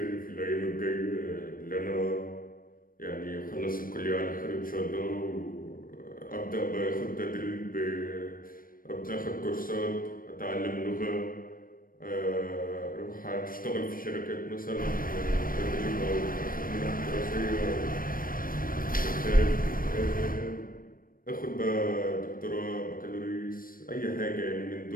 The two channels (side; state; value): right; late; 0.41 ms